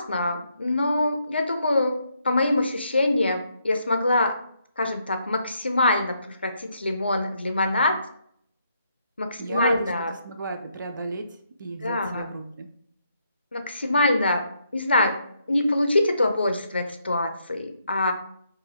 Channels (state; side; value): inverted; both; correlation -0.75